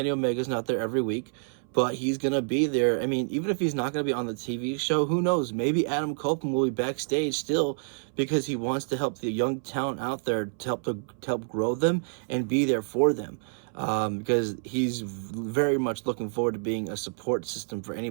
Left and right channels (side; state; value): left; silent; 59 dB below the other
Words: Omega's not there every week. But he's going to be there. I mean, even if he's not going to be on the TV show, who knows? Maybe Adam Copeland will be backstage still, because he wants to help the young talent out there, to help grow them and be there for them. Because he's very much looking forward to being a support system for